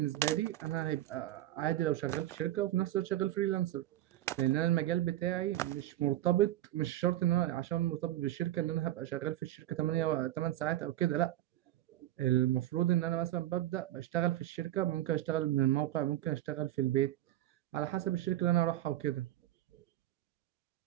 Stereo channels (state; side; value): quieter; left; 14.1 dB